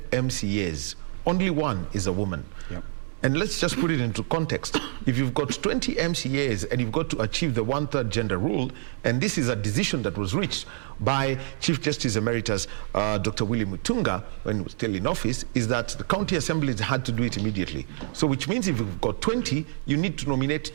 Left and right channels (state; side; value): silent; left; 60 dB below the other